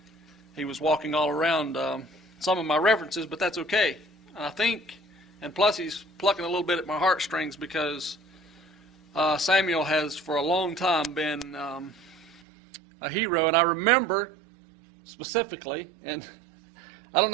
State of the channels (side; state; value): left; drops out; at 12.4 s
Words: He was walking all around some of my references, but that's okay. And I think, and plus he's plucking a little bit at my heartstrings, because Samuel has for a long time been a hero. And I remember specifically, and I don't